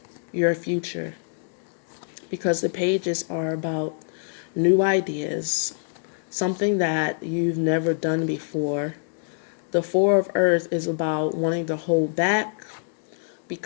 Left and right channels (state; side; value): silent; right; digital silence